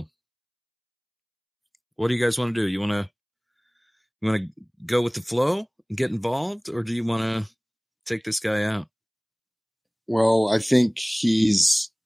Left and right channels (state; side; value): identical; both; correlation 1.00